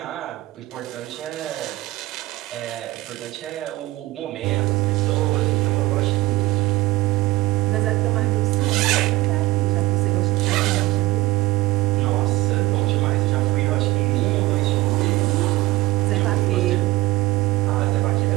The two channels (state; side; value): quieter; left; 18.9 dB